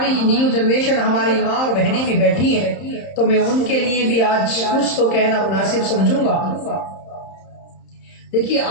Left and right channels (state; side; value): late; right; 31 ms